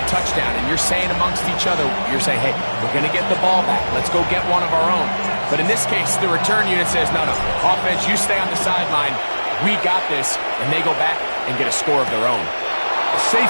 touchdown, and you're saying amongst each other, you're saying, hey, we're going to get the ball back. Let's go get one of our own. But in this case, the return unit says, no, offense, you stay on the sideline. We got this. And they go back and get a score of their own. A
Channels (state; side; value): inverted; both; correlation -1.00